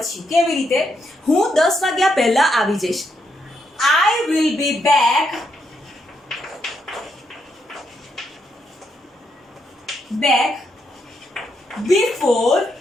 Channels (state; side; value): normal; both; correlation 0.79